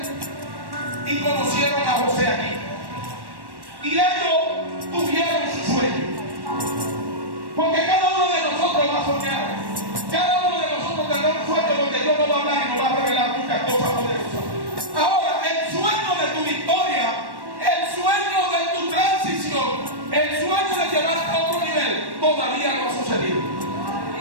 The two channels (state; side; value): late; left; 1.1 ms